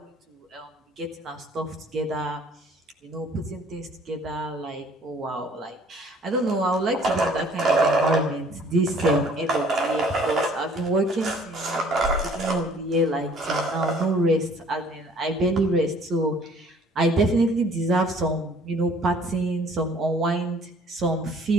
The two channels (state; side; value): normal; both; correlation 0.56